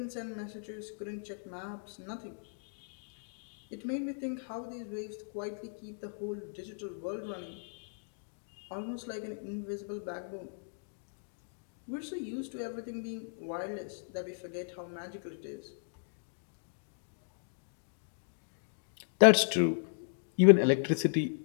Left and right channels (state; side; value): silent; right; digital silence